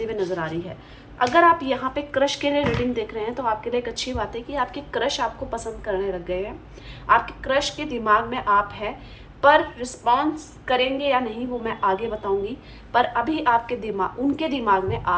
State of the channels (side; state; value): both; identical; correlation 1.00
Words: हुए नज़र आ रही है। अगर आप यहाँ पे क्रश के लिए रीडिंग देख रहे हैं तो आपके लिए एक अच्छी बात है कि आपके क्रश आपको पसंद करने लग गए हैं, आपके क्रश के दिमाग में आप हैं, पर रिस्पॉन्स करेंगे या नहीं वो मैं आगे बताऊंगी। पर अभी आपके दिमाग, उनके दिमाग में